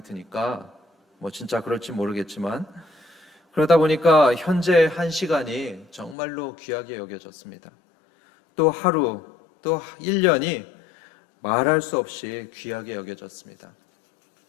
드니까 진짜 그럴지 모르겠지만 그러다 보니까 현재 한 시간이 정말로 귀하게 여겨졌습니다. 또 하루, 또 1년이 말할 수 없이 귀하게 여겨졌습니다.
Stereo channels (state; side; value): drops out; right; at 6.2 s